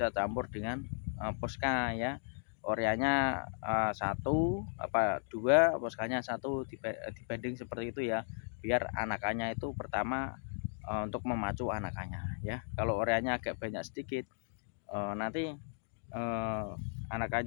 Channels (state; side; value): silent; right; digital silence